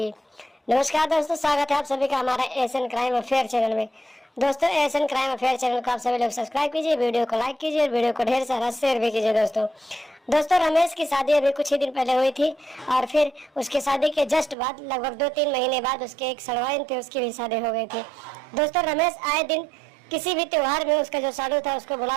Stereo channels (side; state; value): left; drops out; at 14.6 s